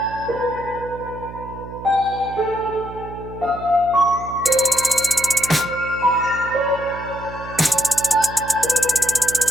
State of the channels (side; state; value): right; noise; hum, 13 dB below the sound